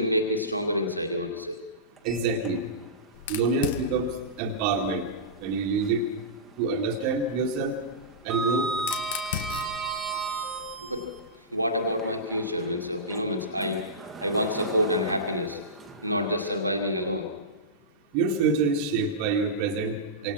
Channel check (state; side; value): normal; both; correlation -0.18